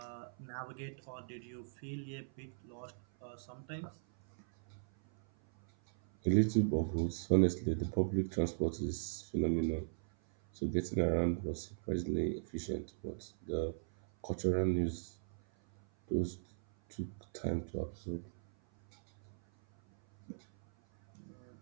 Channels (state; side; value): silent; left; 52 dB below the other